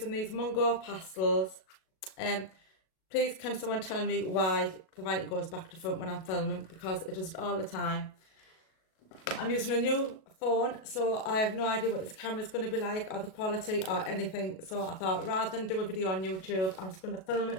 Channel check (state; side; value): late; right; 37 ms